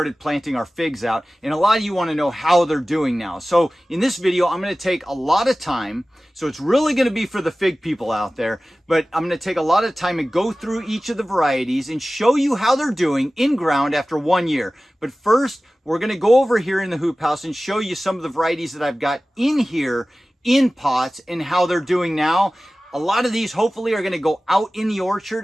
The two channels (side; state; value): both; normal; correlation 0.97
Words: planting our figs out. And a lot of you want to know how they're doing now. So in this video, I'm going to take a lot of time. So it's really going to be for the fig people out there. But I'm going to take a lot of time and go through each of the varieties and show you how they're doing in ground after 1 year. But first, we're going to go over here in the hoop house and show you some of the varieties that I've got in here in pots and how they're doing now. A lot of these hopefully are going to go out in the